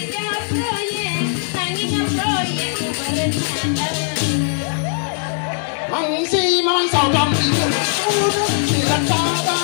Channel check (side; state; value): right; silent; 57 dB below the other